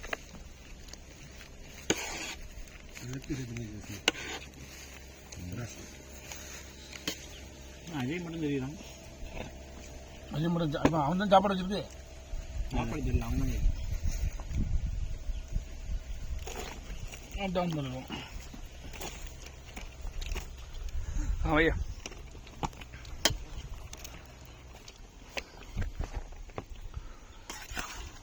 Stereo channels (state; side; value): identical; both; correlation 1.00